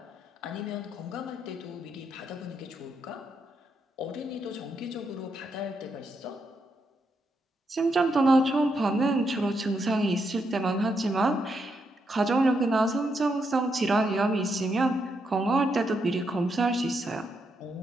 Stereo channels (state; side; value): normal; both; correlation 0.80